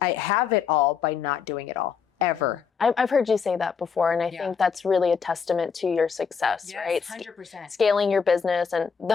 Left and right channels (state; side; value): quieter; right; 6.3 dB